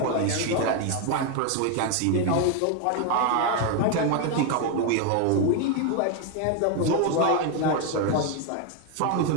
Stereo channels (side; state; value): both; different; correlation 0.01